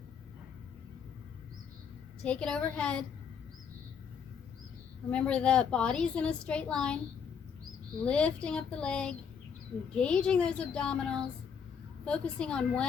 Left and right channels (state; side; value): quieter; right; 6.9 dB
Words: Take it overhead. Remember, the body's in a straight line. Lifting up the leg, engaging those abdominals, focusing on